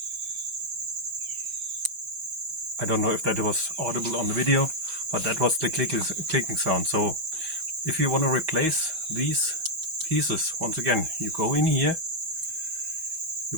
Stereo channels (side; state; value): left; late; 6.2 ms